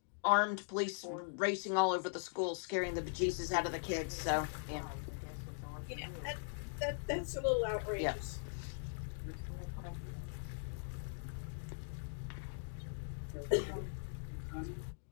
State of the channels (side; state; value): right; silent; digital silence